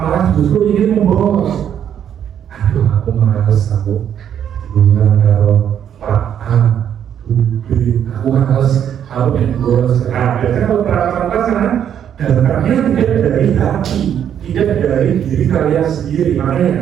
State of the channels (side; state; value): left; quieter; 9.3 dB